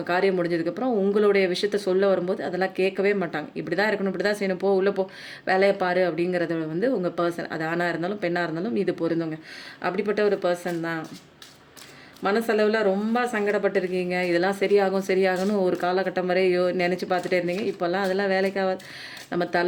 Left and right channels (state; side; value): identical; both; correlation 1.00